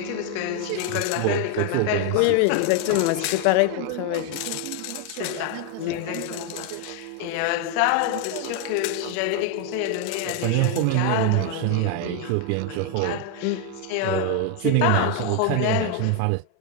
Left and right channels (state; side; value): different; both; correlation 0.01